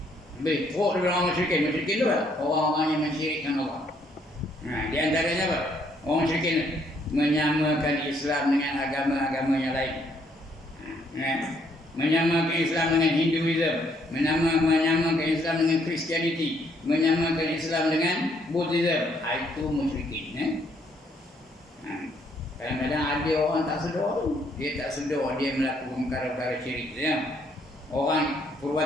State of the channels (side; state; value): both; normal; correlation 0.69